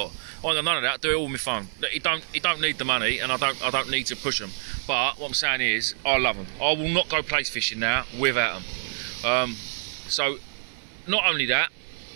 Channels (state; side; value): silent; left; 61 dB below the other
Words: I ain't got none of that. I do it all with my phone. He don't need the money, and I don't need to push him. But what I'm saying is, I love them. I will not go plaice fishing now without them. So, not only that,